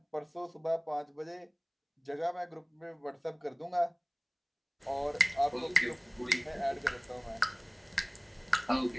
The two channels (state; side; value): identical; both; correlation 1.00